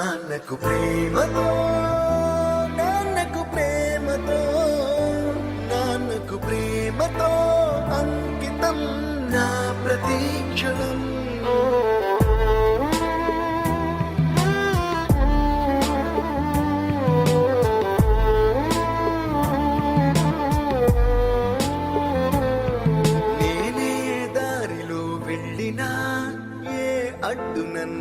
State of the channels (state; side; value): identical; both; correlation 1.00